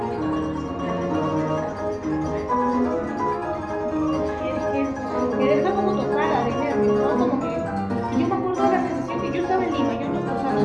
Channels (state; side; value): identical; both; correlation 1.00